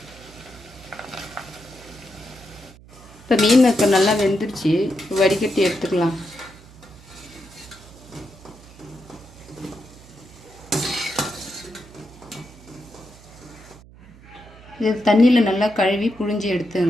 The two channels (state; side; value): noise; right; hum, 22 dB below the sound